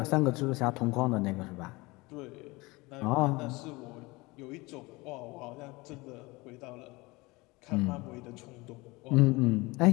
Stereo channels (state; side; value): quieter; right; 23.3 dB